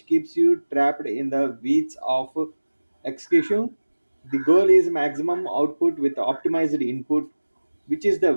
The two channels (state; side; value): inverted; both; correlation -1.00